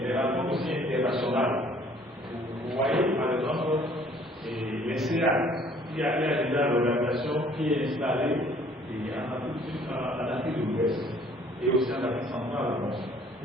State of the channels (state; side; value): normal; both; correlation 0.57